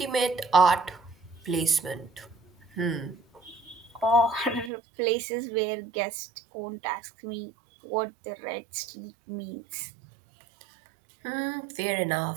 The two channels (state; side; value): drops out; left; at 4.7 s